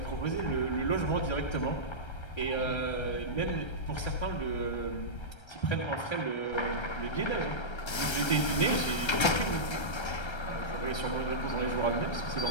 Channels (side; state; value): right; late; 1.3 ms